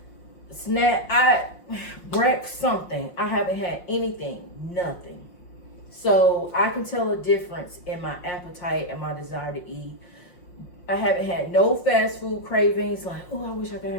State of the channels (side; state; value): right; late; 5.6 ms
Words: something. I haven't had anything, nothing. So I can tell a difference in my appetite and my desire to eat. I haven't had no fast food cravings, like, oh, I wish I could